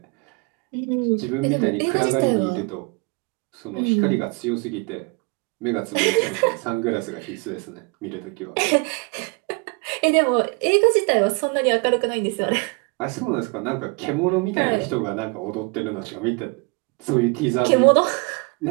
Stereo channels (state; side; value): quieter; left; 30.0 dB